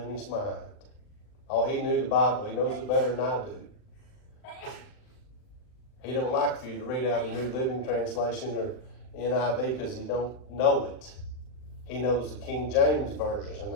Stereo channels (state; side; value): late; right; 39 ms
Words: his mind. Oh, he knew the Bible. He knows it better than I do. He don't like for you to read out the New Living Translation or NIV because he don't know it. He knows the King James Version